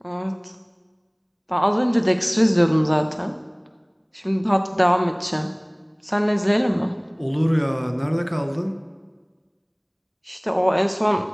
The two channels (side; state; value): both; identical; correlation 1.00